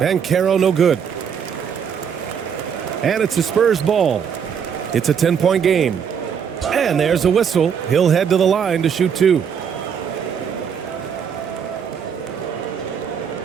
no good. And it's a Spurs ball. It's a 10-point game. And there's a whistle. He'll head to the line to shoot 2.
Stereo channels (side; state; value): left; quieter; 7.4 dB